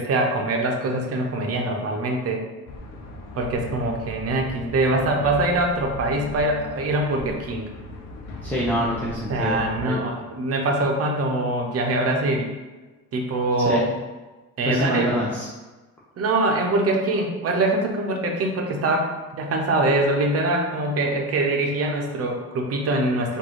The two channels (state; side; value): normal; both; correlation 0.17